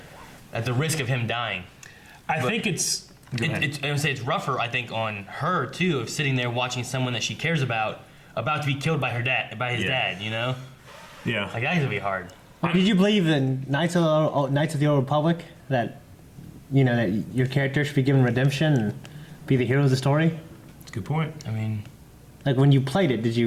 at the risk of him dying, I think it's. I would say it's rougher. I think on her too of sitting there watching someone that she cares about to be killed by his dad. You know. Yeah. Like that's gonna be hard. Did you believe in Knights of the Old Republic that, you know, that your character should be given redemption and be the hero of the story? That's a good point. I mean, like when you played it, did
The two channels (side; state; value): both; identical; correlation 1.00